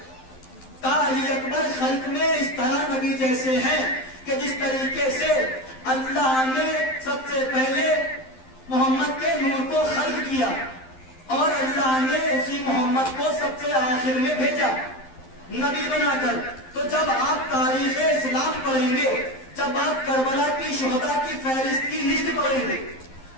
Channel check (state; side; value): late; right; 11 ms